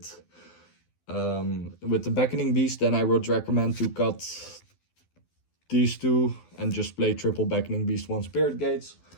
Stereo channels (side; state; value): right; late; 12 ms